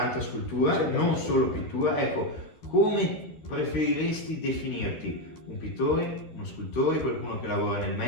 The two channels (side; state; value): right; late; 13 ms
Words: scultura, non solo pittura. Ecco, come preferiresti definirti? Un pittore, uno scultore, qualcuno che lavora nel